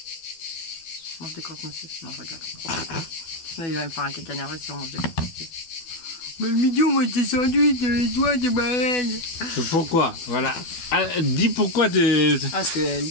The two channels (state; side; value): late; right; 12 ms